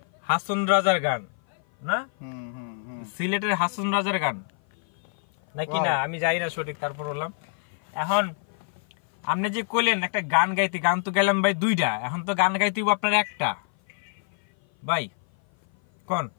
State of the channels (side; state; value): right; silent; 56 dB below the other